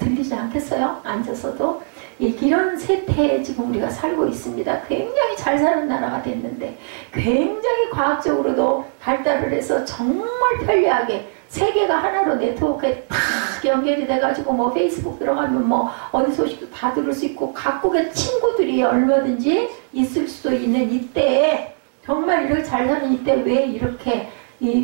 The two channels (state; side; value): silent; left; digital silence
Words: 않겠어요? 앉아서도. 이런 세태에 지금 우리가 살고 있습니다. 굉장히 잘 사는 나라가 됐는데 굉장히 과학적으로도 발달을 해서 정말 편리하게 세계가 하나로 네트워크에 탁 연결이 돼가지고 뭐 페이스북 들어가면 뭐 어디 소식도 다 들을 수 있고 각국의 친구들이 얼마든지 있을 수도 있는 이때에 정말 이렇게 잘 사는 이때 왜 이렇게